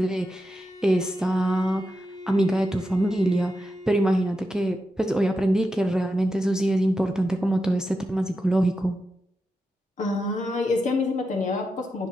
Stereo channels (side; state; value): both; normal; correlation 0.88